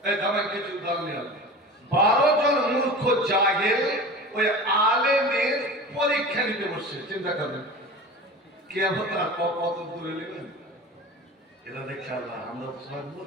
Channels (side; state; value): both; normal; correlation 0.34